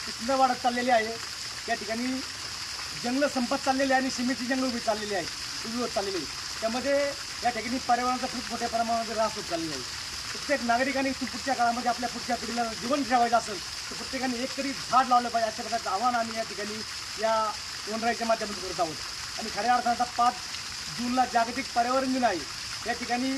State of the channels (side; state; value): both; identical; correlation 1.00